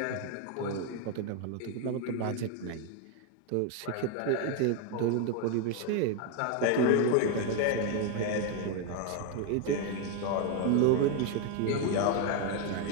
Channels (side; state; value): both; different; correlation 0.01